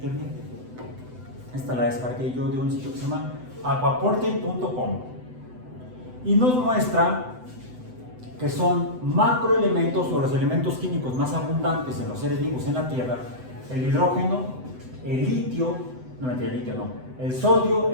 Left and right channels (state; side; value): late; left; 7.9 ms